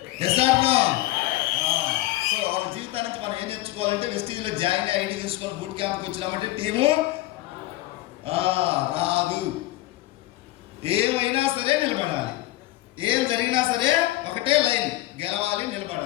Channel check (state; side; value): quieter; right; 17.5 dB